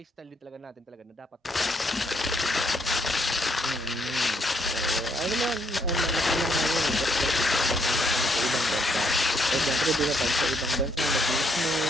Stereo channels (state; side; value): normal; both; correlation 0.72